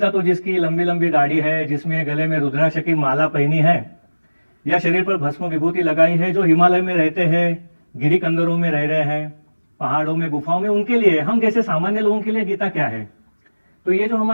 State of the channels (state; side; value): inverted; both; correlation -1.00